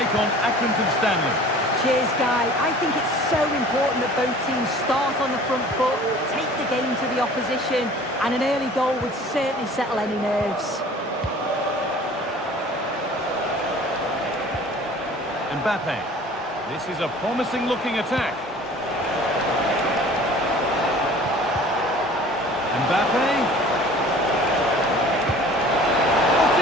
on Accrington Stanley. Cheers, Guy. I think it's so important that both teams start on the front foot, take the game to the opposition, and an early goal would certainly settle any nerves. Mbappe. This is a promising-looking attack. Mbappe.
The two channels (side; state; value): both; normal; correlation 0.47